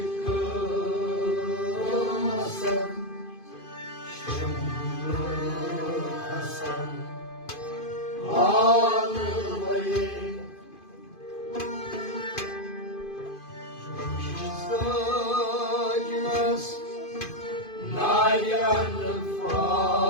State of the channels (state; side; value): late; right; 2.5 ms